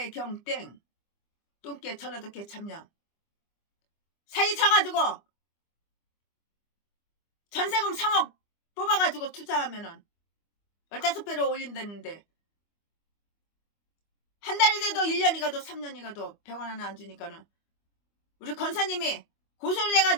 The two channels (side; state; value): right; late; 25 ms